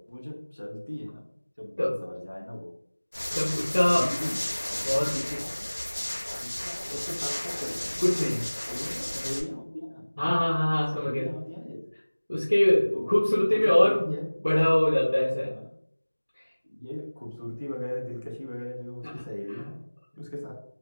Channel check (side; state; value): both; inverted; correlation -1.00